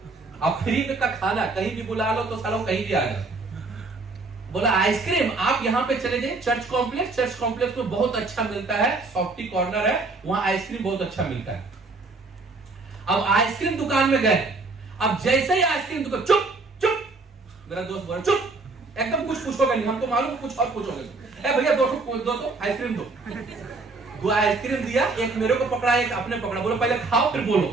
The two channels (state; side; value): quieter; left; 3.6 dB